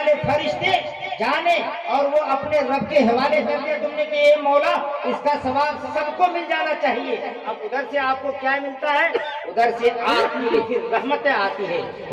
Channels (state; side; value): identical; both; correlation 1.00